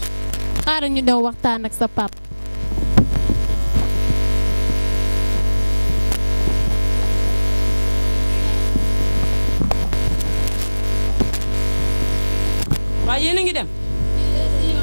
xaaral ñu dem waxtaan ak sa pap. waaye yéen a ngi dem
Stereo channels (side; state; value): both; inverted; correlation -1.00